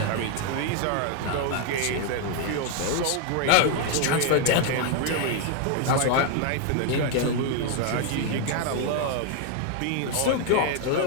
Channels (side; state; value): both; different; correlation 0.00